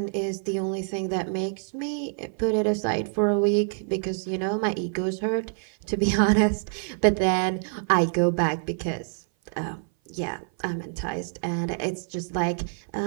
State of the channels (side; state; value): left; silent; 56 dB below the other